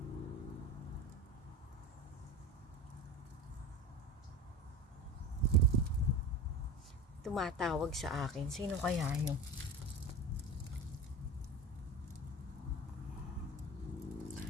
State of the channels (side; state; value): both; normal; correlation 0.29